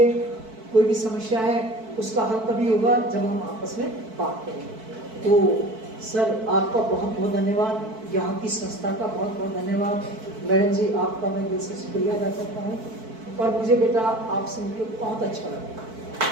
कोई भी समस्या है उसका हल तभी होगा जब हम आपस में बात करेंगे। तो सर आपका बहुत बहुत धन्यवाद, यहाँ की संस्था का बहुत बहुत धन्यवाद। मैडम जी आपका मैं दिल से शुक्रिया अदा करता हूँ, और मुझे बेटा आपसे मिलकर बहुत अच्छा लगा।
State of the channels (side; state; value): left; late; 4.6 ms